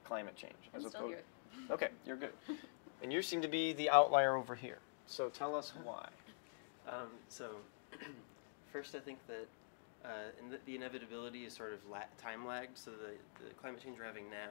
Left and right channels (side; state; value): right; silent; digital silence